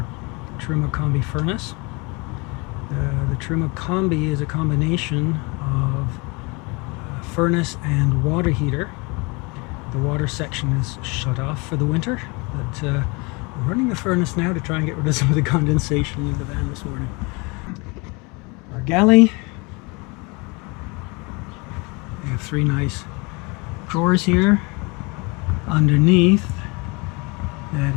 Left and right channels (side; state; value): right; quieter; 28.5 dB